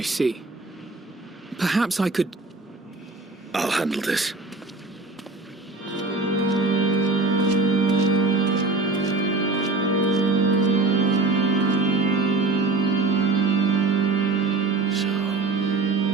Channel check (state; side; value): quieter; left; 3.5 dB